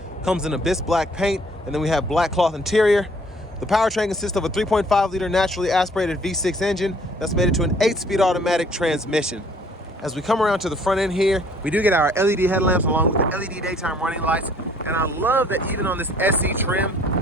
Comes in abyss black paint, and then we have black cloth interior. The powertrain consists of a 3.5 liter naturally aspirated V6 engine that's made it to an 8-speed automatic transmission. As we come around to the front end here, we do get our LED headlamps along with the LED daytime running lights. And I love that even on this SE trim,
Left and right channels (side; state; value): both; normal; correlation 0.58